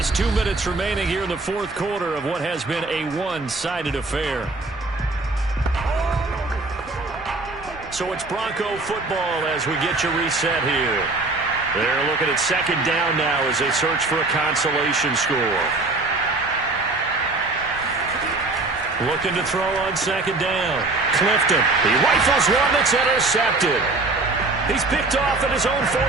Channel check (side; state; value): left; quieter; 3.3 dB